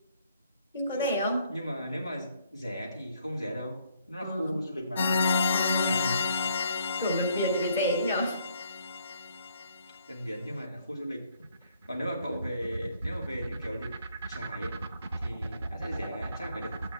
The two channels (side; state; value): both; inverted; correlation -0.68